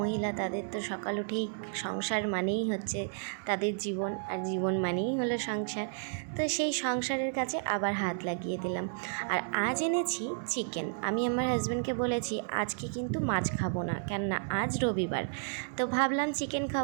তাদের তো সকাল উঠেই সংসার মানেই হচ্ছে তাদের জীবন, আর জীবন মানেই হলো সংসার। তো সেই সংসারের কাজে আবার হাত লাগিয়ে দিলাম। আর আজ এনেছি চিকেন। আমি আমার হাজব্যান্ডকে বলেছি আজকে কিন্তু মাছ খাবো না, কেননা আজ রবিবার। তো ভাবলাম চিকেন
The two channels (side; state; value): left; silent; digital silence